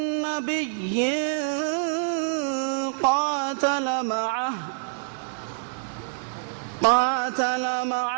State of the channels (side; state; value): left; silent; digital silence